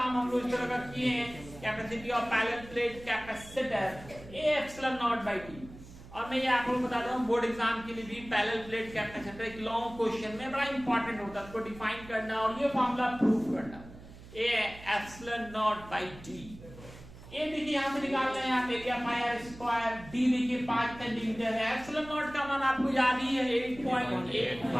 हम लोग इस तरह का किए हैं। Capacity of parallel plate capacitor A epsilon naught by T। और मैं ये आपको बताता हूँ, बोर्ड एग्जाम के लिए भी पैरेलल प्लेट कैपेसिटर एक लॉन्ग क्वेश्चन में बड़ा इंपॉर्टेंट होता है, उसको डिफाइन करना और ये फॉर्मूला प्रूफ करना। A epsilon naught by T। A देखिए यहाँ से निकालना है, आप area pi R square. D देखिए 5 सेंटीमीटर है। एप्सिलॉन नॉट का मान आपको याद ही है,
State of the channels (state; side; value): noise; right; hum, 18 dB below the sound